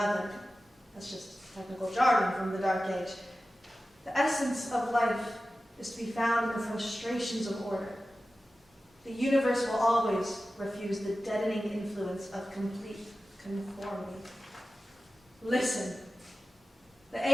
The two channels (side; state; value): both; normal; correlation 0.94